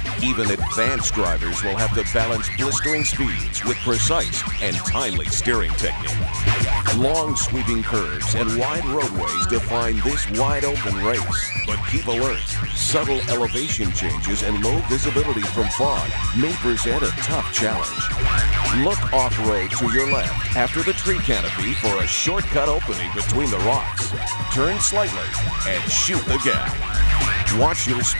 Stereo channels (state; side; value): inverted; both; correlation -1.00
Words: Even advanced drivers will have to balance blistering speeds with precise and timely steering technique. Long sweeping curves and wide roadways define this wide-open race. But keep alert. Subtle elevation changes and low visibility from fog may present a tough challenge. Look off-road to your left after the tree canopy for a shortcut opening between the rocks. Turn slightly and shoot the gap. Watch your